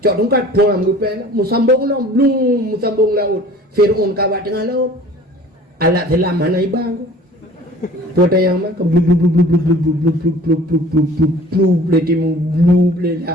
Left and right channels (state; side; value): normal; both; correlation 0.47